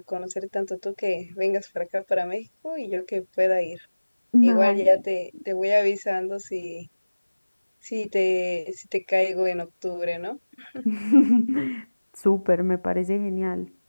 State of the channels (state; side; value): inverted; both; correlation -1.00